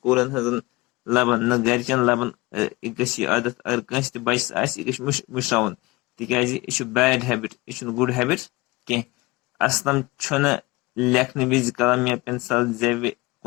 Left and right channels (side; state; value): right; quieter; 22.7 dB